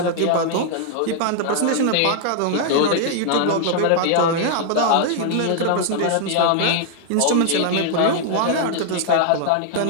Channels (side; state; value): both; different; correlation 0.00